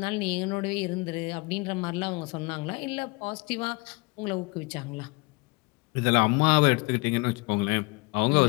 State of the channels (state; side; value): quieter; right; 27.0 dB